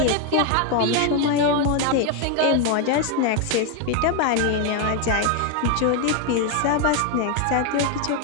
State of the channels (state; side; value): different; both; correlation 0.01